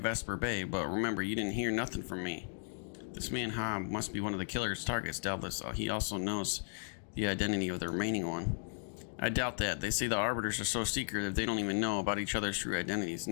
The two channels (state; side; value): silent; right; digital silence